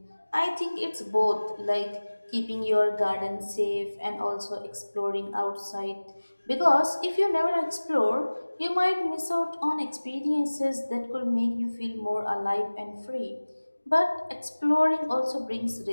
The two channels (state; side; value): inverted; both; correlation -1.00